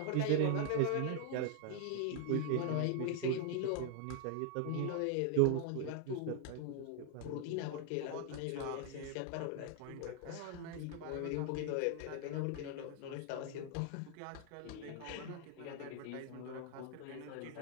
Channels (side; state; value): both; different; correlation 0.00